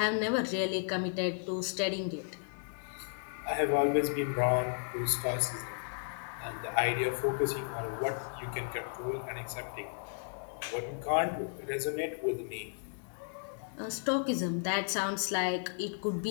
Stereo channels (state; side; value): silent; right; 55 dB below the other